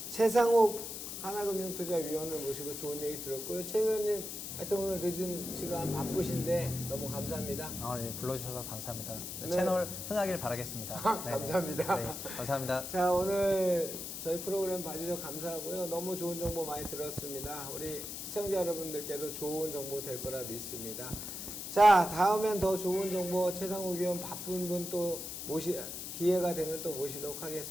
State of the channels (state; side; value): noise; left; hiss, 7 dB below the sound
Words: 최상욱 하나금융투자위원을 모시고 좋은 얘기 들었고요. 최 의원님 하여튼 오늘 늦은 시간 바쁘신데 너무 감사합니다. 네, 불러주셔서 감사합니다. 네. 채널 흥하길 바라겠습니다. 네네. 감사합니다. 네, 감사합니다. 자, 오늘 저희 프로그램 봐주셔서 감사하고요. 너무 좋은 정보 많이 들었습니다. 우리 시청자 여러분들께도 좋은 정보 될 거라 믿습니다. 자, 다음엔 더 좋은 정보 최상욱 의원 바쁜 분 또 기회가 되면 또 모시도록